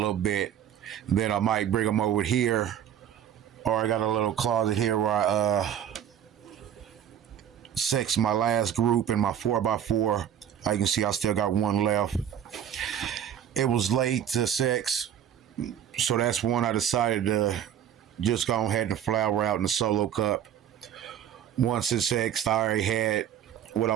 bit. Then I might bring them over here, or I got a little closet here where I sex my last group in my 4x4. You can see I still got 1 left. It was late to sex, so that's one I decided to just go ahead and flower out in the solo cup. Once it's sexed, I already had what I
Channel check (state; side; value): quieter; left; 9.7 dB